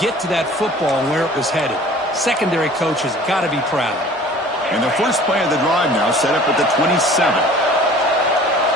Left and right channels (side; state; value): both; normal; correlation 0.48